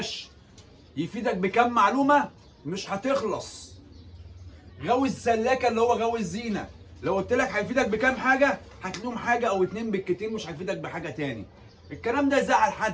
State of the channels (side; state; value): both; identical; correlation 1.00